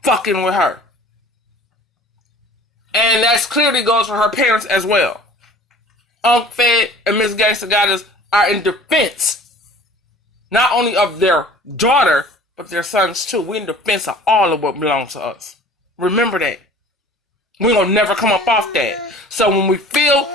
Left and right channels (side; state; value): both; normal; correlation 0.47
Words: fucking with her. And that clearly goes for her parents as well. Unc Fed and Miss Gangsta Goddess are in defense not only of their daughter, but their sons too. We're in defense of all of what belongs to us. Remember that. We're gonna never come up off that. So when we feel